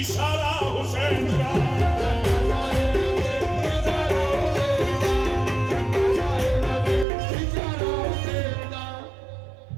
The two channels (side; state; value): left; drops out; at 7.1 s